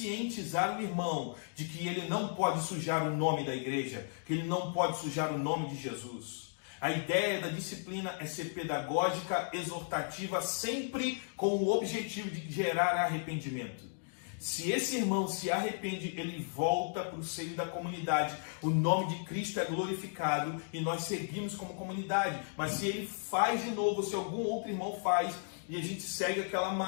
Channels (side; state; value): right; silent; digital silence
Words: o irmão de que ele não pode sujar o nome da igreja, que ele não pode sujar o nome de Jesus. A ideia da disciplina é ser pedagógica, exortativa, sempre com o objetivo de gerar arrependimento. Se esse irmão se arrepende, ele volta para o seio da comunidade. O nome de Cristo é glorificado e nós seguimos como comunidade. Mas se ele faz de novo, se algum outro irmão faz, e a gente segue aquela